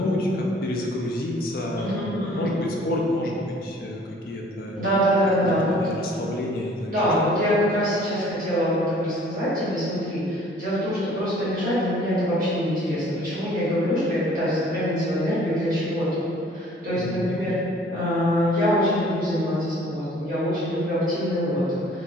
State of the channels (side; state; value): both; normal; correlation 0.54